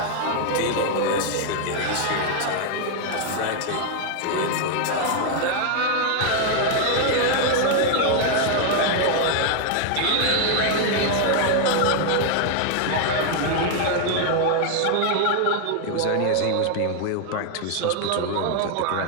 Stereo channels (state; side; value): different; both; correlation 0.00